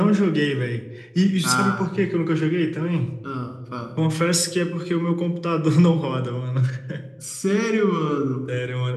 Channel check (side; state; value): both; identical; correlation 1.00